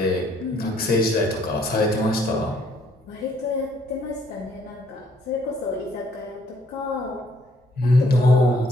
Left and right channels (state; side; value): normal; both; correlation 0.65